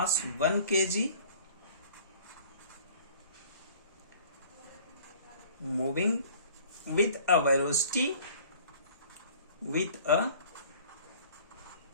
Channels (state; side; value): inverted; both; correlation -0.50